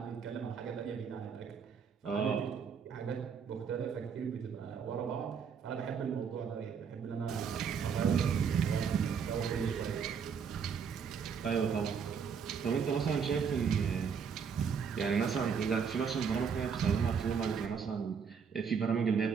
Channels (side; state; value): left; quieter; 6.6 dB